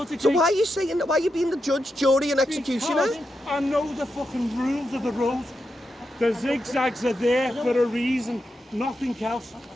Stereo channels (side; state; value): both; normal; correlation 0.86